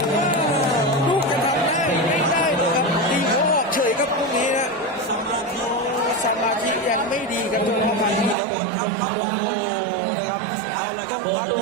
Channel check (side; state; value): left; drops out; at 8.3 s